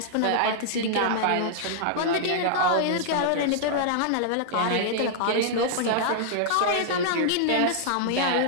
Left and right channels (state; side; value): different; both; correlation -0.01